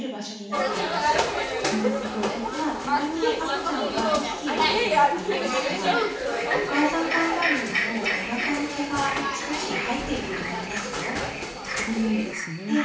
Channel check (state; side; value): identical; both; correlation 1.00